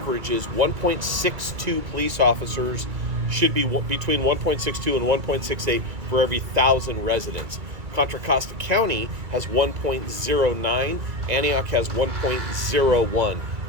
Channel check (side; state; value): left; late; 2.3 ms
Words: is 1.62 police officers should be between 1.62 and 1.68 for every 1,000 residents. Contra Costa County has 1.09. Antioch has 1.01.